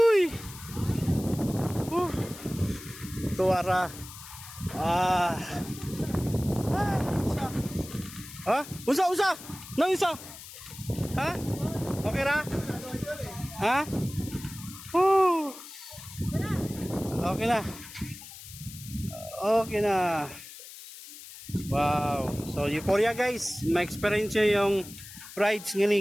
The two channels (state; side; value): noise; left; hiss, 15 dB below the sound